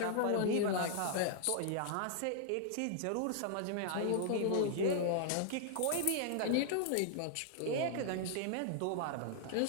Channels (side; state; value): both; different; correlation -0.01